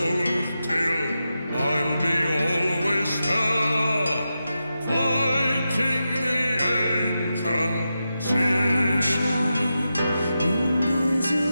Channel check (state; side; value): inverted; both; correlation -0.90